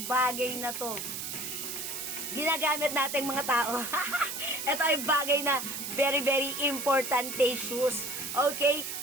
bagay na to. Ginagamit nating mga tao. Ito ay bagay na very importante shoes. Okay,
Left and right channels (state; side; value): noise; right; hiss, 5 dB below the sound